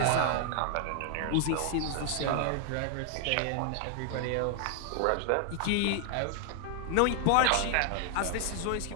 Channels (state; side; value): different; both; correlation 0.00